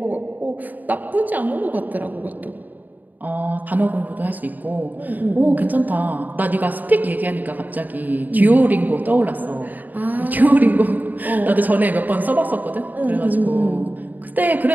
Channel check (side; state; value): left; late; 0.084 ms